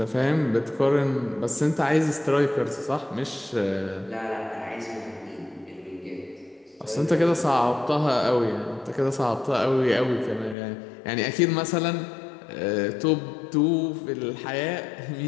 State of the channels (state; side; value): drops out; right; at 10.6 s